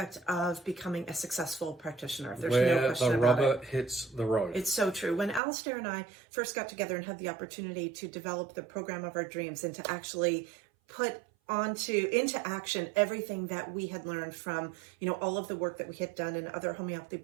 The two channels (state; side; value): drops out; left; at 5.4 s